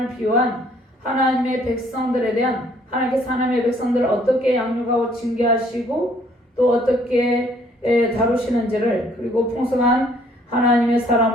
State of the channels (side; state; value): both; normal; correlation 0.62